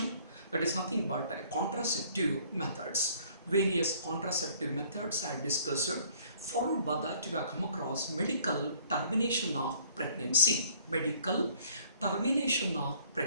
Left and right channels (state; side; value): inverted; both; correlation -0.58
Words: that is nothing but contraceptive methods. Various contraceptive methods I discussed. Followed by that we have come across medical termination of pregnancy. Medical termination of